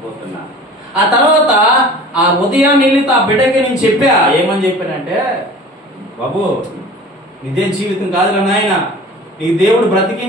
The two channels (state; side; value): normal; both; correlation 0.42